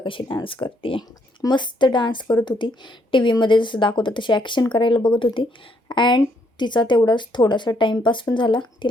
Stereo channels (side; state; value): both; normal; correlation 0.71